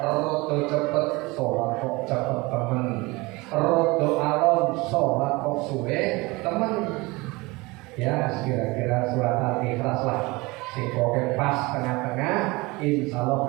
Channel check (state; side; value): quieter; left; 23.5 dB